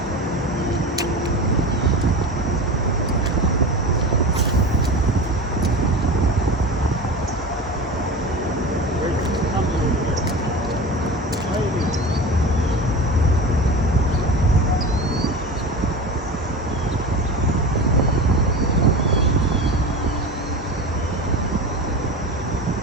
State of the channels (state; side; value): normal; both; correlation 0.30